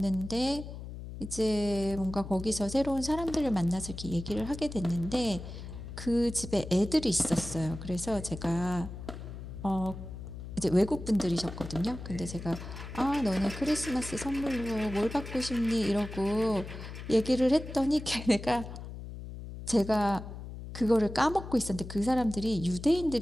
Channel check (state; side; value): noise; left; hum, 10 dB below the sound